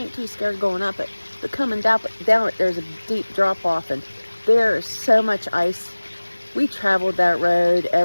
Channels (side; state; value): both; inverted; correlation -1.00